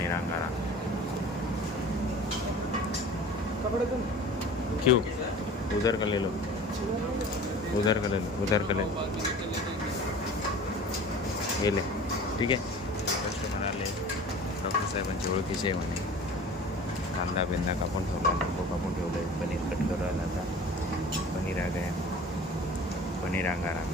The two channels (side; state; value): both; normal; correlation 0.42